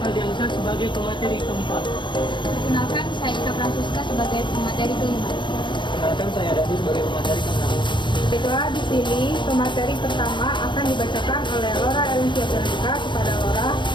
sebagai pemateri keempat. Perkenalkan, saya Ika Francisca sebagai pemateri kelima. Perkenalkan, saya Dadi sebagai pemateri keenam. Baiklah, di sini pemateri pertama akan dibacakan oleh Laura Elencia Veronica. Kepada Laura,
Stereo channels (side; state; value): right; late; 0.23 ms